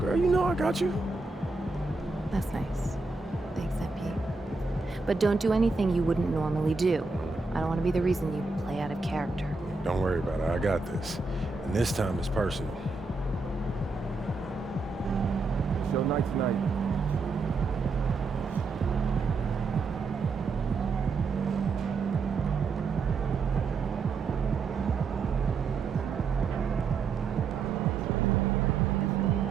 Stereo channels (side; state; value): left; quieter; 4.0 dB